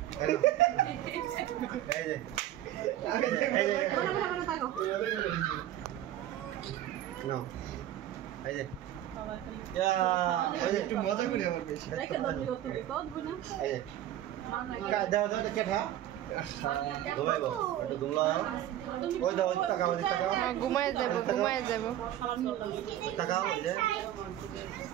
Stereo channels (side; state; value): left; quieter; 12.6 dB